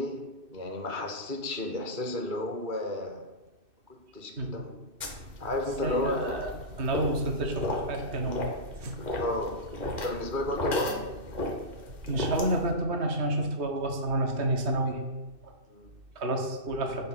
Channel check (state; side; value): late; left; 2.6 ms